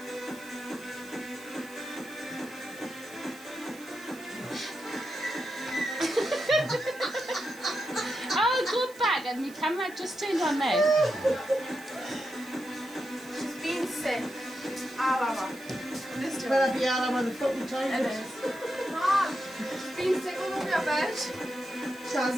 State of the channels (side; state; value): right; noise; hiss, 21 dB below the sound